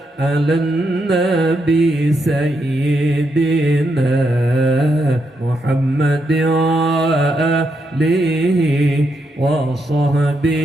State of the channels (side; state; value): both; normal; correlation 0.81